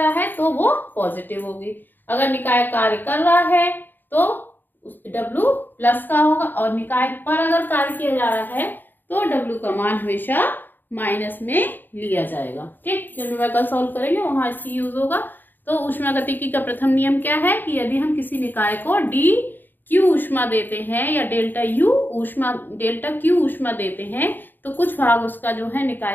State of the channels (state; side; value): late; right; 0.091 ms